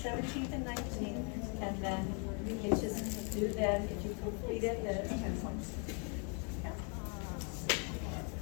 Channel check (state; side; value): quieter; right; 38.0 dB